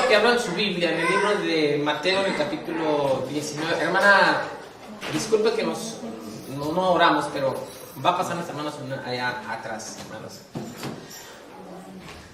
que abran su Biblia en el libro de Mateo, en el capítulo 19. Hermana, disculpe que no oramos, pero va a pasar las hermanas allá atrás, hermanos.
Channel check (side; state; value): both; identical; correlation 1.00